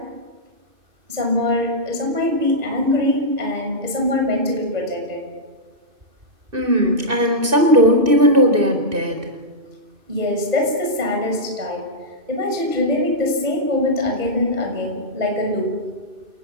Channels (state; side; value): late; left; 2.6 ms